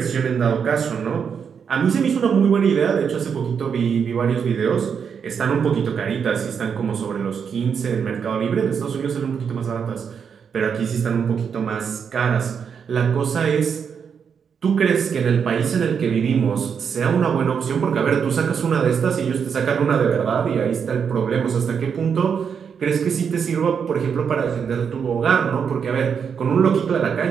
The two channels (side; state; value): left; quieter; 6.9 dB